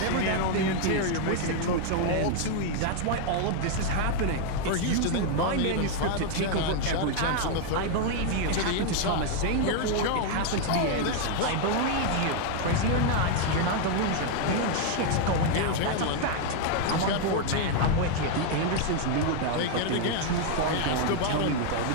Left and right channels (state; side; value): different; both; correlation 0.00